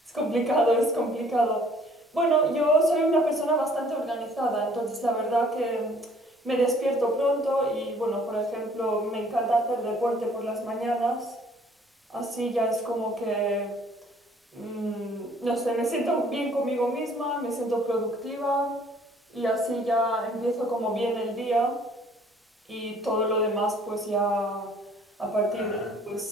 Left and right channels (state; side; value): normal; both; correlation 0.58